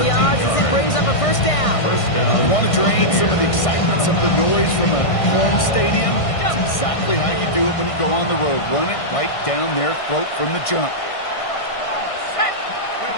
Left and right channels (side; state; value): right; late; 1.6 ms